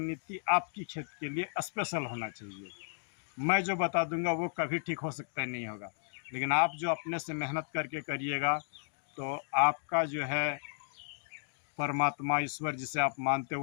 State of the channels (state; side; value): silent; right; digital silence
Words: आपकी खेत के लिए स्पेशल होना चाहिए। मैं जो बता दूंगा वो कभी ठीक हो सकता है, नहीं होगा, लेकिन आप जो अपने से मेहनत करके करिएगा तो आपका जो है परमात्मा, ईश्वर जिसे आप मानते हो,